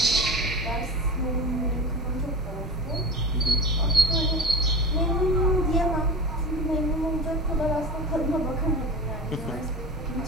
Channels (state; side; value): normal; both; correlation 0.30